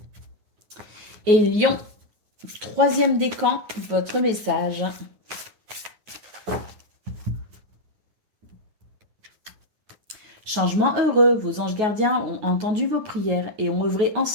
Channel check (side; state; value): left; late; 9.4 ms